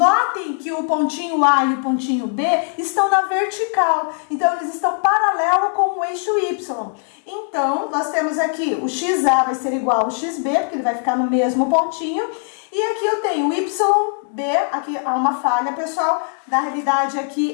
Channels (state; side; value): silent; right; 55 dB below the other